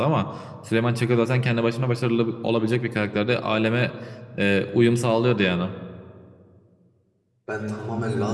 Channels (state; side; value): identical; both; correlation 1.00